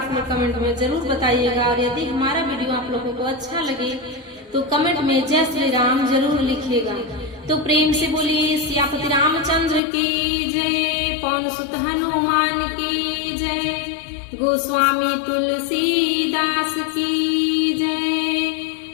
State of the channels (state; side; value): drops out; right; at 9.8 s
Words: लोग कमेंट में जरूर बताइएगा। और यदि हमारा वीडियो आप लोगों को अच्छा लगे तो कमेंट में जय श्री राम जरूर लिखिएगा। तो प्रेम से बोलिए सियापति रामचंद्र की जय, पवन सुत हनुमान की जय, गोस्वामी तुलसीदास की जय,